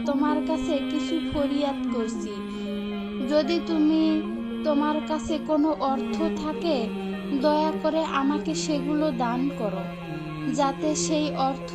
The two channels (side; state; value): both; identical; correlation 1.00